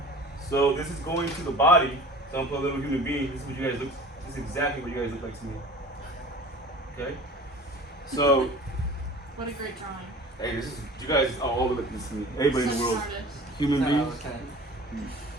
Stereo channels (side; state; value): both; normal; correlation 0.42